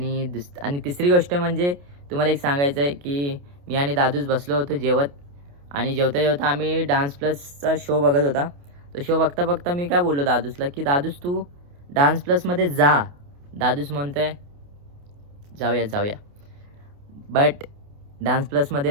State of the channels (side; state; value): left; late; 28 ms